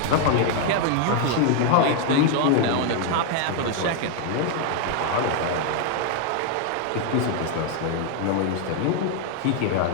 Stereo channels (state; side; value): different; both; correlation 0.00